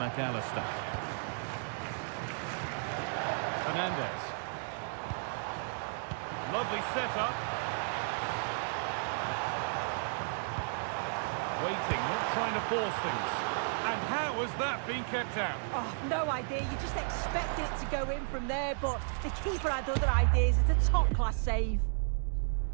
Fernandez. Lovely setup. Waiting, not trying to force things. And How has that been kept out? Oh, no idea. You just expect it to go in from there, but the keeper had other ideas. It's a top-class save.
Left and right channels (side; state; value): left; silent; digital silence